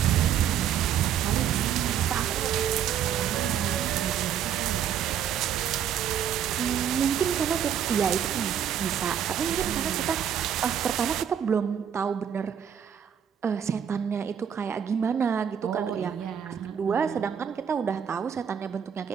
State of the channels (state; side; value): quieter; left; 8.8 dB